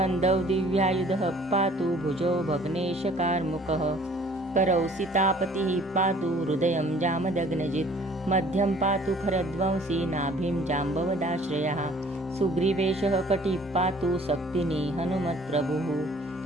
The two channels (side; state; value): both; normal; correlation 0.54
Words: दिव्यायुधः पातु भुजौ भग्नेशकार्मुकः करौ सीतापतिः पातु हृदयं जामदग्नजित् मध्यं पातु खरध्वंसी नाभिं जाम्बवदाश्रयः सुग्रीवेशः कटिः पातु शक्तिनी हनुमत्प्रभुः